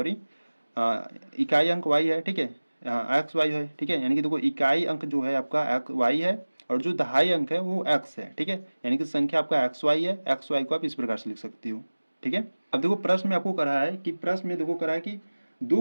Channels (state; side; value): inverted; both; correlation -1.00